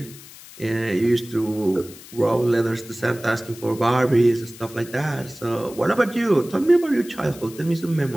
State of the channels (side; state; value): left; noise; hiss, 18 dB below the sound